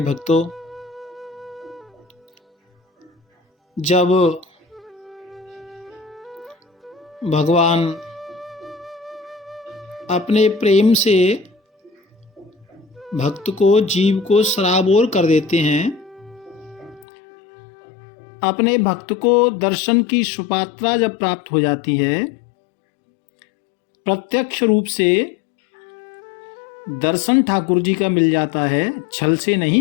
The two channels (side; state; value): right; drops out; at 17.1 s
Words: भक्तों, जब भगवान अपने प्रेम से भक्त को, जीव को सराबोर कर देते हैं, अपने भक्त को दर्शन की सुपात्रा जब प्राप्त हो जाती है, प्रत्यक्ष रूप से दर्शन ठाकुर जी का मिल जाता है, छल से